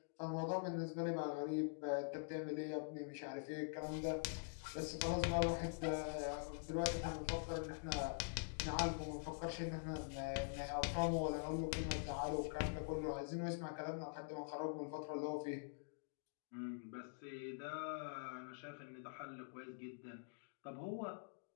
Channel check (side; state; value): right; silent; digital silence